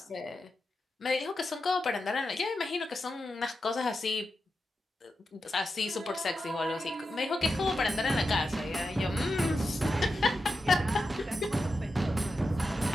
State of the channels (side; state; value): both; normal; correlation 0.90